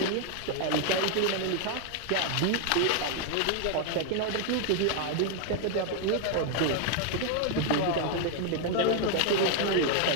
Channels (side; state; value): both; different; correlation 0.00